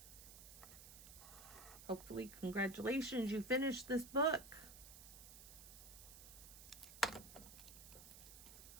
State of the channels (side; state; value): right; noise; hiss, 14 dB below the sound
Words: Hopefully, congratulations, you finished this book.